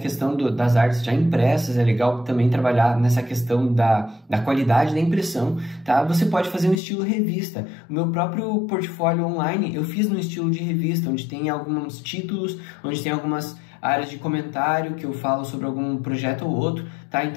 das artes já impressas, é legal também trabalhar nessa questão da qualidade da impressão, tá? Você pode fazer um estilo revista. O meu próprio portfólio online, eu fiz no estilo de revista, onde tem alguns títulos, onde tem algumas áreas de comentário que eu falo sobre algum projeto ou outro, tá?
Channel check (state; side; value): drops out; right; at 6.8 s